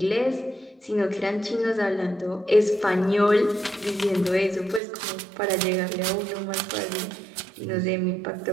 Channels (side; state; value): left; drops out; at 4.8 s